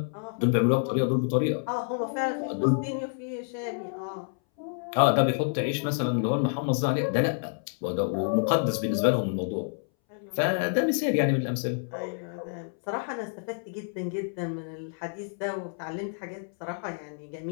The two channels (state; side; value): silent; right; 59 dB below the other